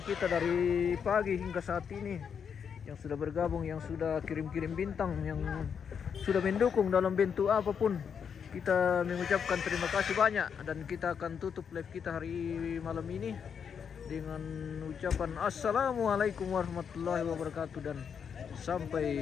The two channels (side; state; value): right; quieter; 7.1 dB